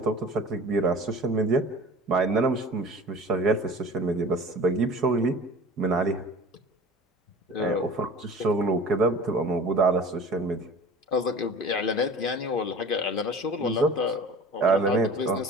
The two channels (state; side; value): normal; both; correlation 0.41